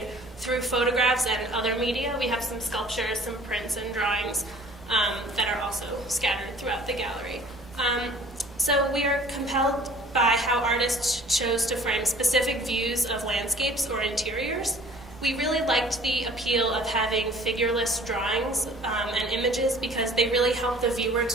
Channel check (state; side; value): normal; both; correlation 0.51